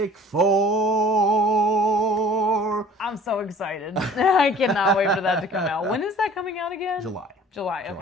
Four! I'm so excited. I cannot wait for that to come out. When is that coming out again? July.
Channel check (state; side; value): normal; both; correlation 0.50